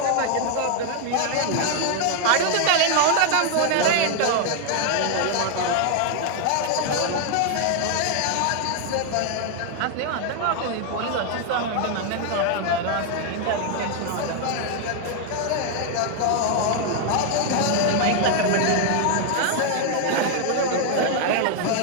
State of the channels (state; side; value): different; both; correlation 0.00